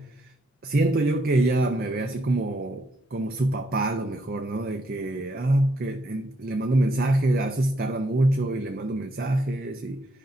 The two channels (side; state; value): both; normal; correlation 0.74